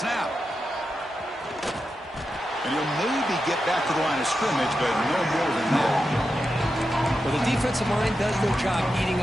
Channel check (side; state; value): both; normal; correlation 0.89